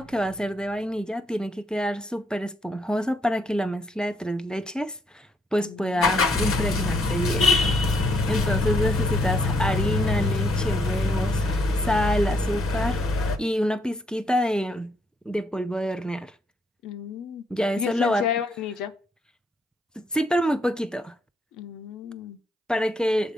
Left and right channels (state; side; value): normal; both; correlation 0.73